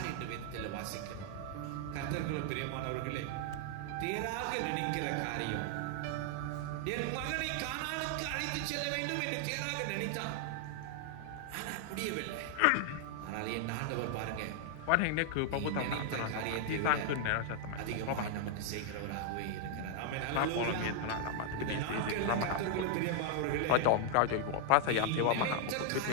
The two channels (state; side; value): different; both; correlation 0.00